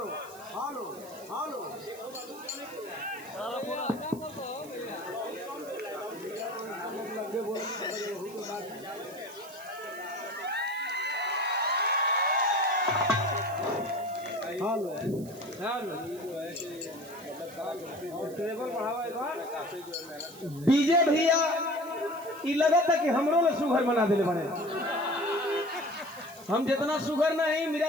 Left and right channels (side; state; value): right; noise; hiss, 19 dB below the sound